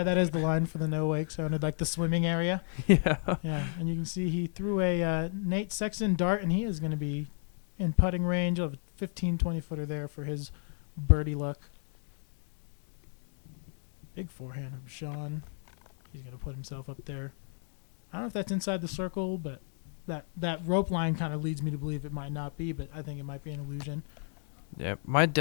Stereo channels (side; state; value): right; silent; 56 dB below the other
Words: that is the line for the no wake zone, like the swimming area. Yeah. Yeah, and you can see he threw a Nate Sexton dart, and he is going to be in putting range of a 15, 20-footer there for his birdie luck. Big forehand from Sean. He's going to put himself up there. I don't know if that's inside the circle, but that rope line kind of leads me to believe it might not be, but I think it might be an illusion. Yeah, my